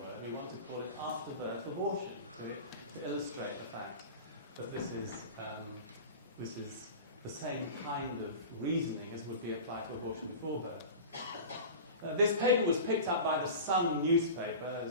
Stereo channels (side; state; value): both; inverted; correlation -0.33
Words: We want to call it after-birth abortion, to illustrate the fact that this is the same kind of reasoning as would be applied to abortion before birth. This paper was picked up by the Sun newspaper,